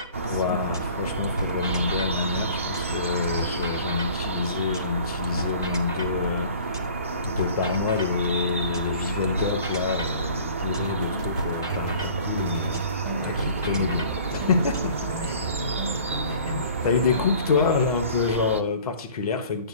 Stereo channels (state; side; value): inverted; both; correlation -0.48